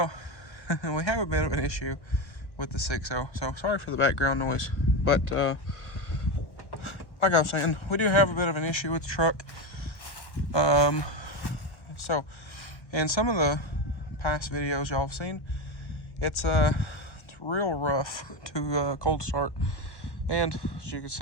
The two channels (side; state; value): right; late; 1.1 ms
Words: we have a bit of an issue with the 6.0, so sorry for the background noise. But like I was saying, we do have a bit of an issue with the truck. So in some of the past videos y'all have seen, it's real rough to cold start, and as you can